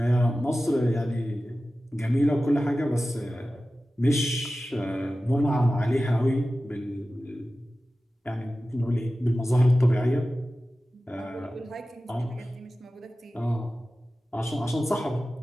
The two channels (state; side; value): normal; both; correlation 0.95